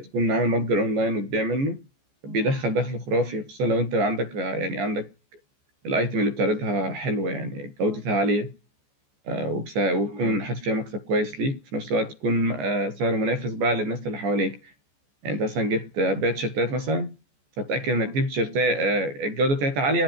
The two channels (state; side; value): late; left; 14 ms